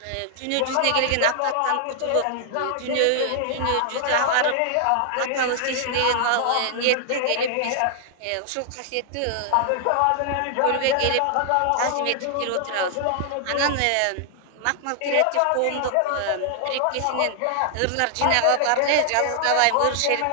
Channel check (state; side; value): different; both; correlation 0.00